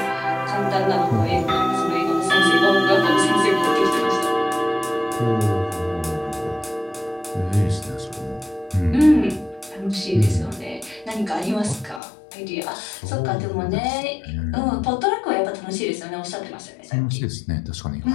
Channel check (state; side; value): drops out; right; at 12.0 s